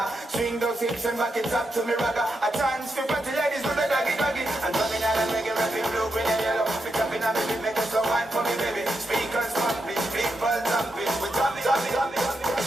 Swing those hips and back it up to me ragga. A chance for party ladies do the doggy doggy. And drumming on and reggae, rapping blue, green and yellow. We tapping on me, make us some wine for me baby. Speakers pumping, people jumping. We drumming.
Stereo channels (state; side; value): normal; both; correlation 0.84